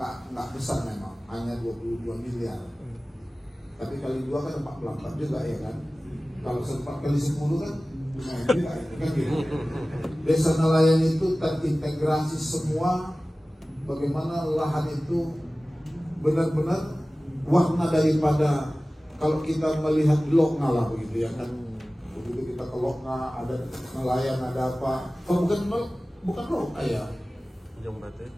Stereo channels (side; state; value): both; normal; correlation 0.97